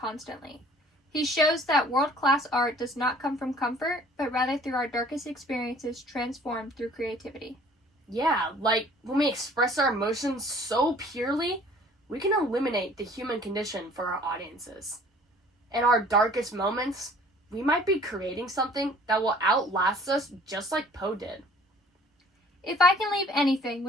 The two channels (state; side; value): normal; both; correlation 0.53